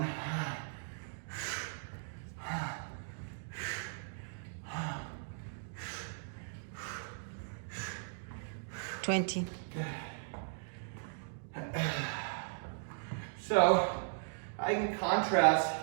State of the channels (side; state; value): left; silent; digital silence